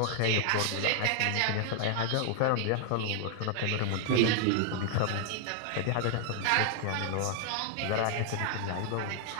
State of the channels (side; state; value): both; different; correlation 0.00